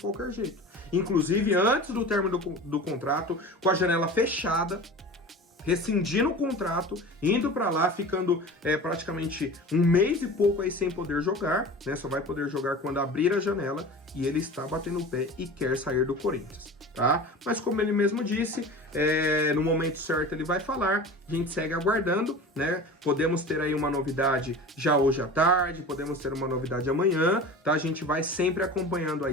jeito. Inclusive, antes do término do contrato, com a janela fechada, rescindindo o contrato, indo para lá, ficando praticamente um mês e pouco aí sem poder jogar, né? Só vai poder jogar quando abrir a janela, e ele está batendo o pé e quer sair do Corinthians, tá? Mas como ele mesmo disse, no momento certo ele vai falar, a gente segue aguardando, né? Podemos ter aí uma novidade já hoje à tarde, podemos ter uma novidade amanhã, tá? A gente vai sempre acompanhando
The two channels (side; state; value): both; normal; correlation 0.35